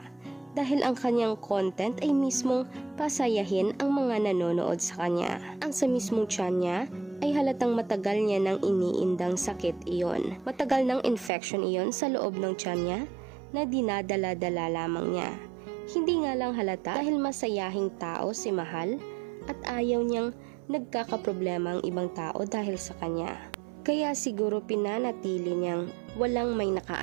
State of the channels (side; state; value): left; drops out; at 11.3 s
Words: dahil ang kanyang content ay mismong pasayahin ang mga nanonood sa kanya. Ang sa mismong tiyan niya ay halatang matagal niya nang iniindang sakit iyon. Matagal ng infection iyon sa loob ng tiyan niya na dinadala-dala lamang niya. Hindi nga lang halata dahil masayahing tao si Mahal at ayaw niyang nagkakaproblema ang ibang tao dahil sa kanya. Kaya siguro pinanatili niyang walang may